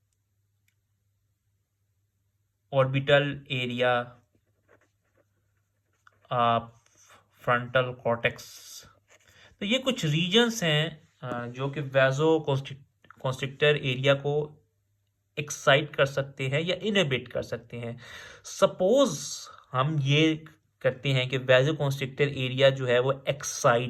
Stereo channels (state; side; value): identical; both; correlation 1.00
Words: ऑर्बिटल एरिया फ्रंटल कॉर्टेक्स। तो ये कुछ रीजन्स हैं जो कि वैसो कॉन्स्ट्रिक्टर एरिया को एक्साइट कर सकते हैं या इनहिबिट कर सकते हैं। सपोज हम ये करते हैं कि वैसो कॉन्स्ट्रिक्टर एरिया जो है वो